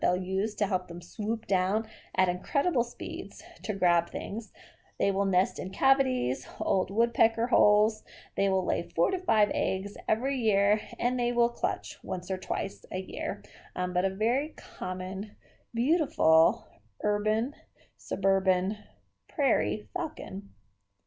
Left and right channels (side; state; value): both; identical; correlation 1.00